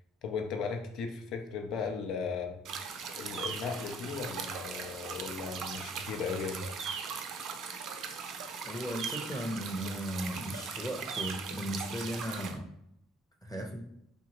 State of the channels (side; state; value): both; normal; correlation 0.57